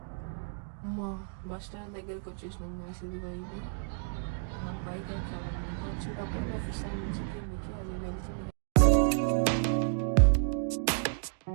మా బస్ స్టాండ్ దగ్గరికి వచ్చేసినాం గైస్. ఇదిగో ఇది నా పైకి ఎక్కాలన్నమాట. వచ్చేటప్పుడు లెఫ్ట్ సైడ్ నుంచి కిందికి అది వెళ్తుంది.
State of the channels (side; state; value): left; silent; digital silence